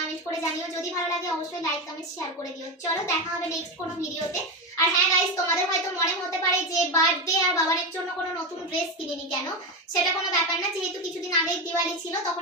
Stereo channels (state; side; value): normal; both; correlation 0.15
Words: করে জানিও। যদি ভালো লাগে অবশ্যই লাইক কমেন্ট শেয়ার করে দিও। চলো দেখা হবে নেক্সট কোনো ভিডিওতে। আর হ্যাঁ গাইস, তোমাদের হয়তো মনে হতে পারে যে বার্থডে আর বাবানের জন্য কোনো নতুন ড্রেস কিনিনি কেন, সেটা কোনো ব্যাপার না। যেহেতু কিছুদিন আগেই দিওয়ালি ছিল, তখন